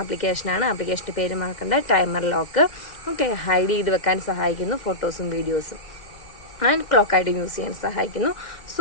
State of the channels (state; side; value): late; right; 1.8 ms